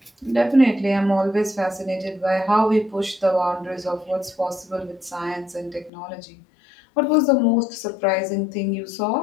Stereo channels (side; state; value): right; drops out; at 5.9 s